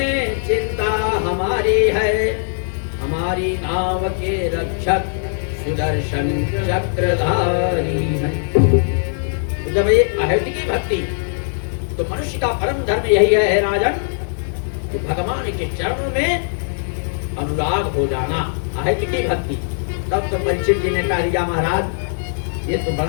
चिंता हमारी है, हमारी नाव के रक्षक सुदर्शन चक्रधारी है। तो जब ये अहेतुकी भक्ति, तो मनुष्य का परम धर्म यही है राजन, कि भगवान के चरणों में अनुराग हो जाना, अहेतुकी भक्ति। तब तो परीक्षित जी ने कहा रिया महाराज ये तो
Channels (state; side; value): silent; right; digital silence